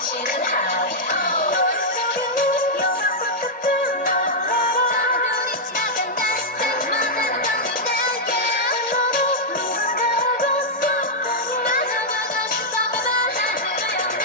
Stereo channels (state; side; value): normal; both; correlation -0.06